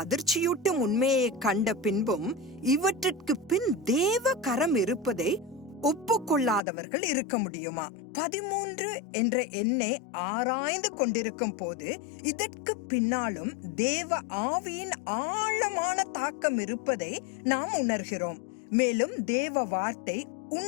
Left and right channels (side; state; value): right; drops out; at 6.6 s